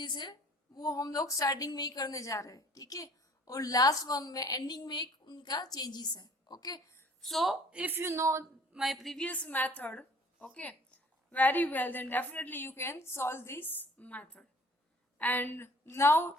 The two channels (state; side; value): normal; both; correlation 0.53